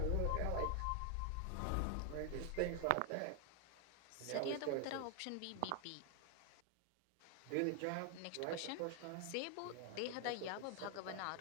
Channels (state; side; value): different; both; correlation 0.00